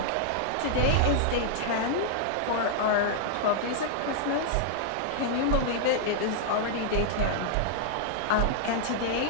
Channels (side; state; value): both; different; correlation -0.01